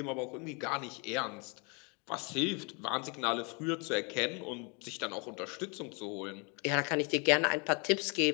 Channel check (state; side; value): quieter; right; 33.4 dB